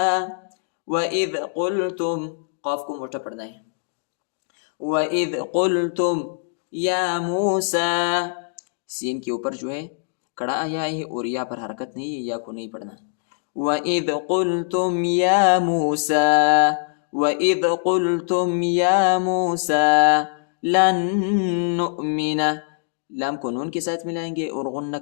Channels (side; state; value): right; silent; digital silence